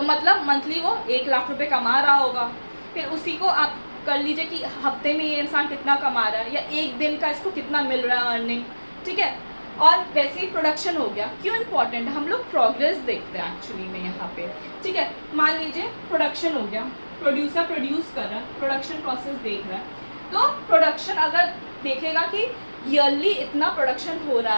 मतलब मंथली वो 1 लाख रुपए कमा रहा होगा। फिर उसी को आप कर लीजिए कि हफ्ते में ये इंसान कितना कमा रहा है, या एक दिन का इसको कितना मिल रहा है अर्निंग। ठीक है, और वैसे ही प्रोडक्शन हो गया। क्यों इम्पॉर्टेंट है? हम लोग प्रोग्रेस देखते हैं एक्चुअली में यहाँ पे। ठीक है, मान लीजिए प्रोडक्शन हो गया, प्रोड्यूसर प्रोड्यूस कर रहा है, प्रोडक्शन प्रोसेस देख रहा है, तो प्रोडक्शन अगर देखेगा कि ईयरली इतना प्रोडक्शन हो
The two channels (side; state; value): both; inverted; correlation -1.00